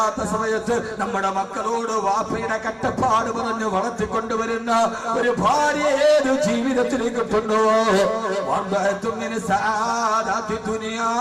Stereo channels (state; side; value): identical; both; correlation 1.00